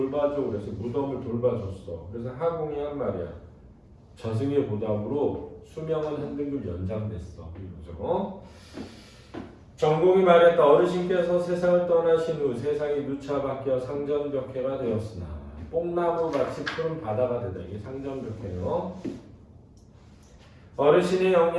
그래서 무덤을 돌봐줬어. 그래서 하공이 한 말이야. 저승의 보답으로 수명은 한 등급 연장됐어. 이거죠. 정공이 말했다. 어르신께서 세상을 떠나신 후 세상이 누차 바뀌어 상전벽해가 되었으나 뽕나무 같이 푸른 바다가 되다. 이게 상전벽해요. 어르신의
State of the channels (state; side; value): identical; both; correlation 1.00